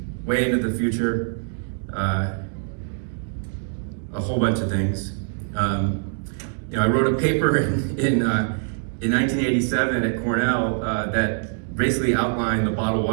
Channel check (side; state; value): left; silent; digital silence